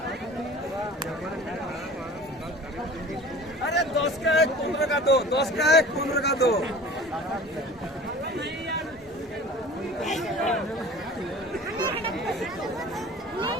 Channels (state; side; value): normal; both; correlation 0.42